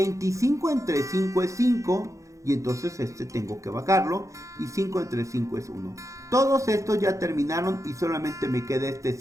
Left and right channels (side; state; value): left; late; 0.15 ms